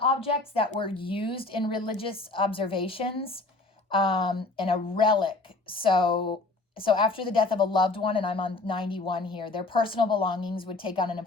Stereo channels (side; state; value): right; quieter; 3.3 dB